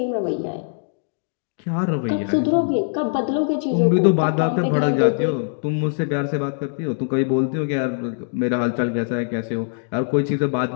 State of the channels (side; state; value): right; silent; digital silence